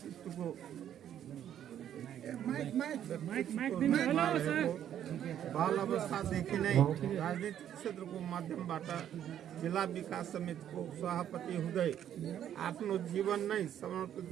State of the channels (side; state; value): left; quieter; 10.3 dB